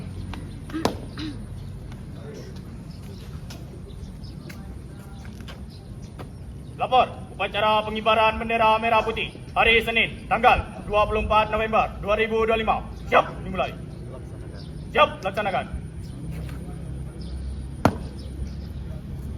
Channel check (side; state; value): both; identical; correlation 1.00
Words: Lapor, upacara pengibaran bendera merah putih hari Senin, tanggal 24 November 2025. Siap dimulai. Siap laksanakan.